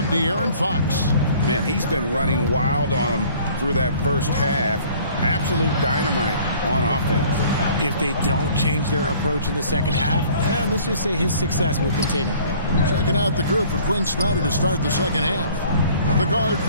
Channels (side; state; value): both; inverted; correlation -0.53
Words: De'Aaron Fox. Man, he's been running wild on them through that first half. Absolute dynamite on offense. If they don't change their approach in the second half, let's just say his success will continue. Checking out the group for Quinn Snyder to start the second half. The guard